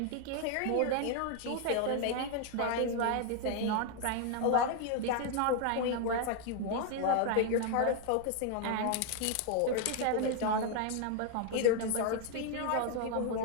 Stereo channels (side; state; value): both; different; correlation 0.00